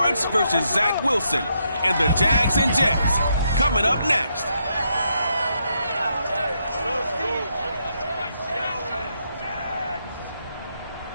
versus Zach Wilson and the Jags and Jets coming up next.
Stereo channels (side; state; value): both; inverted; correlation -0.78